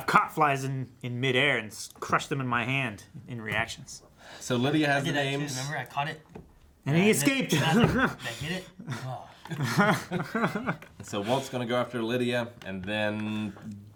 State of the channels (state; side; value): identical; both; correlation 1.00